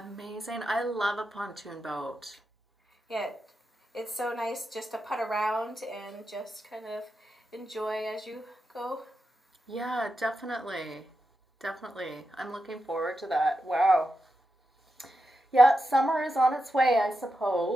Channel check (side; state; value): both; normal; correlation 0.88